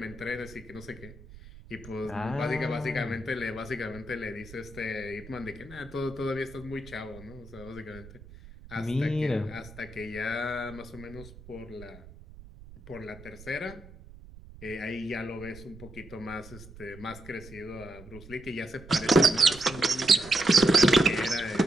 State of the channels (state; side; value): noise; right; rumble, 18 dB below the sound